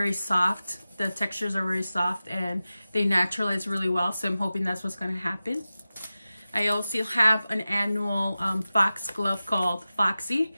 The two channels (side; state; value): both; inverted; correlation -0.95